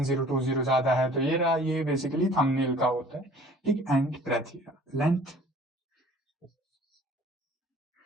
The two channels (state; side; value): normal; both; correlation 0.51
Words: ज्यादा है तो ये रहा, ये बेसिकली थंबनेल का होता है, ठीक। एंड ब्रेथ, लेंथ